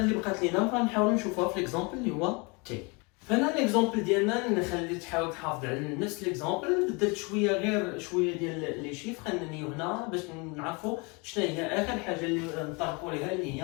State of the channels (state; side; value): quieter; right; 29.5 dB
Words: اللي بقات لينا غنحاولوا نشوفوها في ليكزامبل اللي هو تي. فهنا ليكزامبل ديالنا نخلي تحاول تحافظ على نفس ليكزامبل بدلت غير شويه ديال لي شيفر انني هنا باش نعرفوا شنو هي اخر حاجه اللي نطرقوا ليها اللي